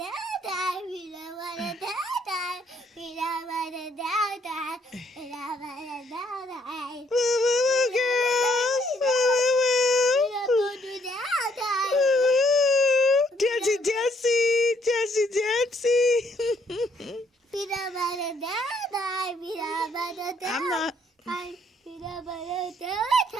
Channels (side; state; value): both; normal; correlation 0.68